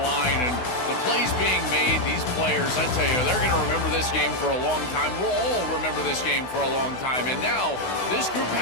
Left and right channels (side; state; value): right; late; 16 ms